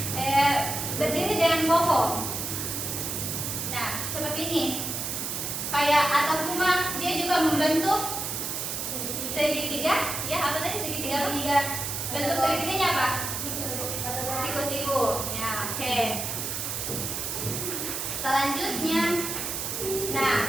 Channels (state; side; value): noise; right; hiss, 3 dB below the sound